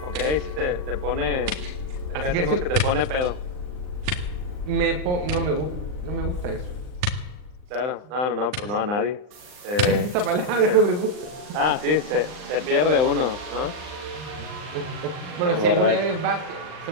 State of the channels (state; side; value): late; left; 39 ms